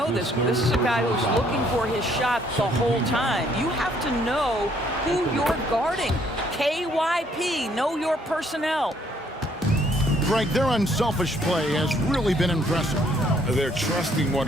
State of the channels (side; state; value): both; normal; correlation 0.65